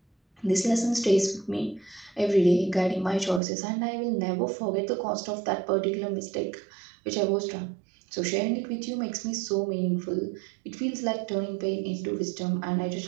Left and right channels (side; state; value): left; drops out; at 3.4 s